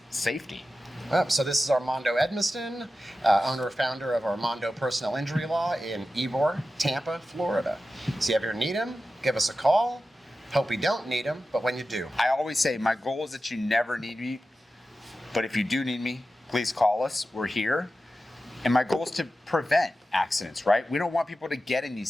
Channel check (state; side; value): normal; both; correlation 0.93